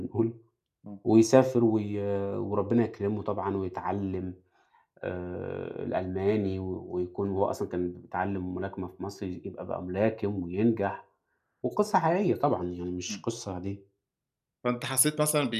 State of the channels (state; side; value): identical; both; correlation 1.00